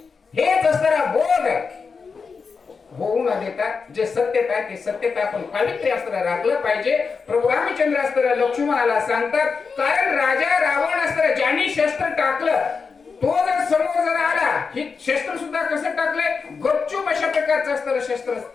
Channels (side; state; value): right; quieter; 5.2 dB